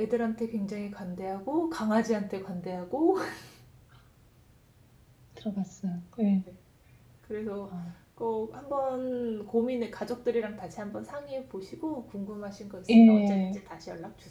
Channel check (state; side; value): identical; both; correlation 1.00